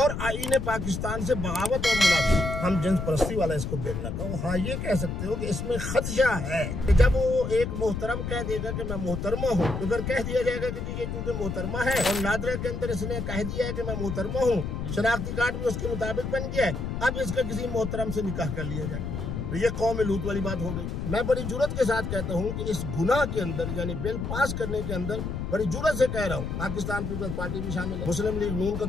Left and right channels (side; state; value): left; noise; rumble, 4 dB below the sound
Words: आईने पाकिस्तान से बगावत और मुनाफी। हम जिन्स परस्ती वाला इसको बिल ना कहो। हाँ, ये कह सकते हो कि इसमें खदशा है कि जब वो एक मोहतरम कह देगा कि मैं मोहतरमा हूँ, तो फिर कह दिया जाएगा कि ये चूंकि मोहतरमा है और नादरा के अंदर इसने कह दिया है कि मैं मोहतरमा हूँ, शनाख्ती कार्ड भी उसके मुताबिक बन गया है, अब इसका किसी मोहतरम से निकाह कर लिया जाए, तो ये कौम लूत वाली बात हो गई। मैं बड़ी जुर्रत के साथ कहता हूँ कि इस गुनाह के अंदर यानी बिल पास करने के अंदर बड़ी जुर्रत से कह रहा हूँ, पाकिस्तान पीपल्स पार्टी भी शामिल है, मुस्लिम लीग नून का